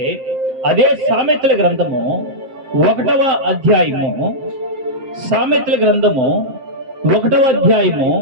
అదే సామెతల గ్రంథము 1వ అధ్యాయము, సామెతల గ్రంథము 1వ అధ్యాయము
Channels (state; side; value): late; left; 7.6 ms